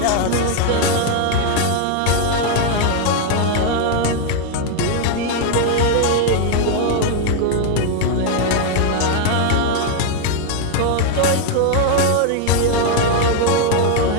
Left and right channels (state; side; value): different; both; correlation 0.00